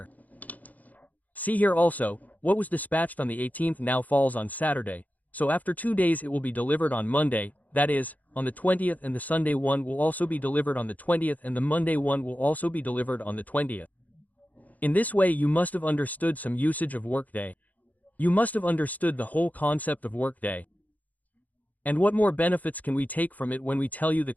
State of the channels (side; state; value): right; late; 0.078 ms